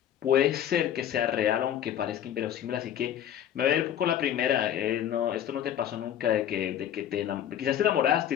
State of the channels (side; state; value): right; quieter; 10.5 dB